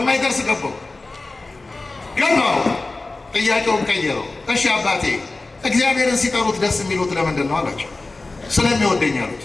ገባው። ጥያቄውን ቀየረው። እሺ አባቴ እግዚአብሔርን ሲጠሩት ደስ የሚሉት ለምንድን ነው አላቸው። ስለሚወደኝ አሉት።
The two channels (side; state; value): right; quieter; 3.3 dB